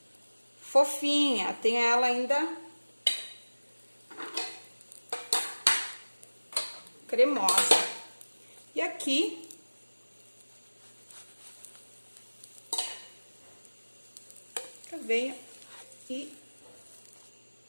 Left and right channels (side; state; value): both; inverted; correlation -1.00